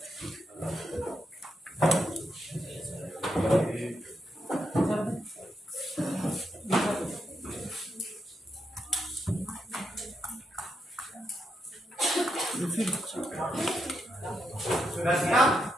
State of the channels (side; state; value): both; normal; correlation 0.82